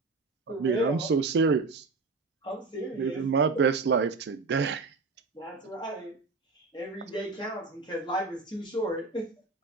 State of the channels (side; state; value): left; quieter; 4.0 dB